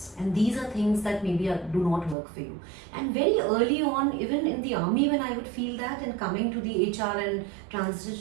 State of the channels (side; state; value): left; drops out; at 2.1 s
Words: and these are things that maybe do not work for you. And very early on, even in the army, when I would feel that, and coming to the HR and